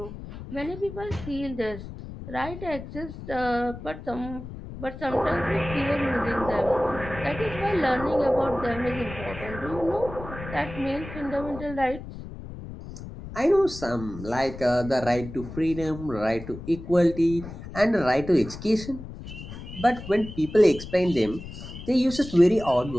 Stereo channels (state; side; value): noise; left; rumble, 12 dB below the sound